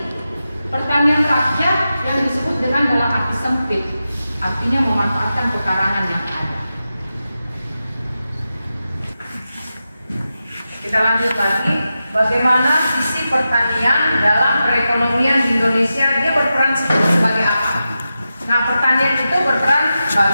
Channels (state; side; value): inverted; both; correlation -0.91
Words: pertanian rakyat yang disebut dengan dalam arti sempit, artinya memanfaatkan pekarangan yang ada. Kita lanjut lagi, bagaimana sisi pertanian dalam perekonomian di Indonesia, dia berperan sebagai apa? Nah, pertanian itu berperan